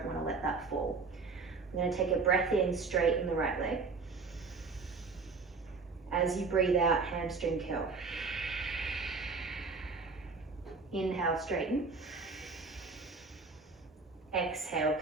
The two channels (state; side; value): quieter; left; 4.4 dB